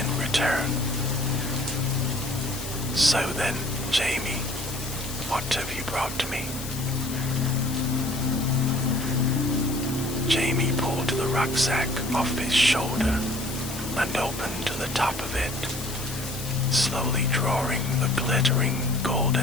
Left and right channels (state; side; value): noise; left; hiss, 10 dB below the sound